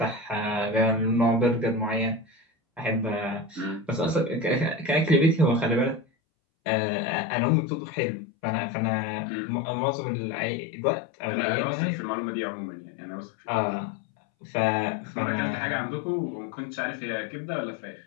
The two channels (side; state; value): right; drops out; at 6.1 s